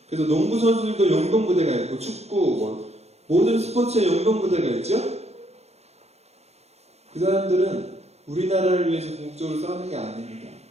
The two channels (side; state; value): left; late; 0.31 ms